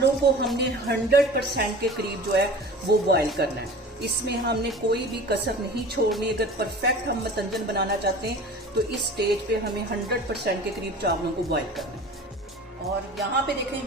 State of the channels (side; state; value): both; normal; correlation 0.39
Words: को हमने 100% के करीब जो है वो बॉयल करना है। इसमें हमने कोई भी कसर नहीं छोड़नी। अगर परफेक्ट हम मतंजन बनाना चाहते हैं तो इस स्टेज पे हमें 100% के करीब चावलों को बॉयल करना है। और यहाँ पे